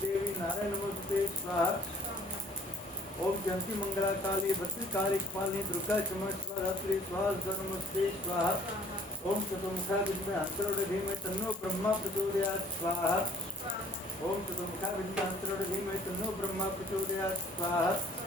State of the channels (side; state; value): both; normal; correlation 0.56